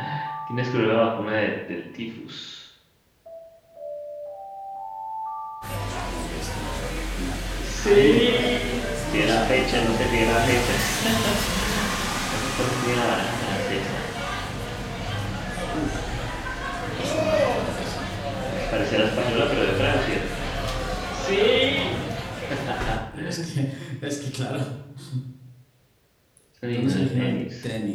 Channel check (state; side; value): identical; both; correlation 1.00